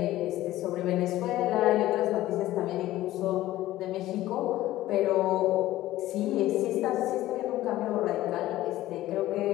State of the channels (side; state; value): right; quieter; 15.4 dB